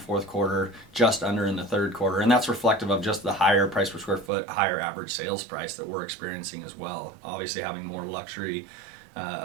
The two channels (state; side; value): drops out; left; at 4.3 s